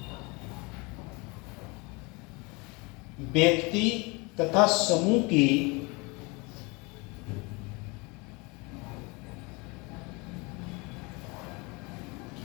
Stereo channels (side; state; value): right; quieter; 27.3 dB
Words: व्यक्ति तथा समूह की